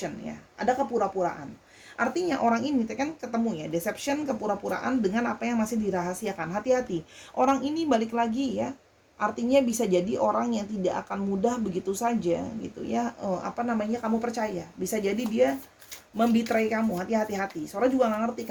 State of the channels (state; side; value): identical; both; correlation 1.00